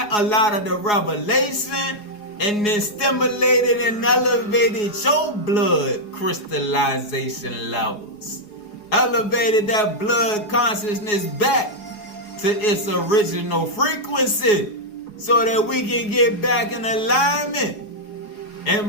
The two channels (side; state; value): right; late; 4.8 ms